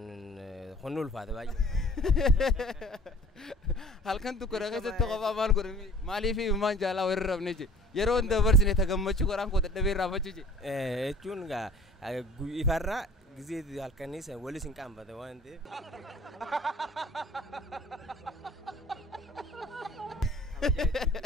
hunni ulfaate baay'ee. Halkan dukkana keessatti qofaa maal godhanii maaliif minumaan jaalaa warra rafne je yeroo hunda dabarsine tagammachuu qoraan koo dadhabee raafachuu je. Jechuun ifarraa gisee halkanii san walis hin qaanfate waan ta'eef.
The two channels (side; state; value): both; normal; correlation 0.48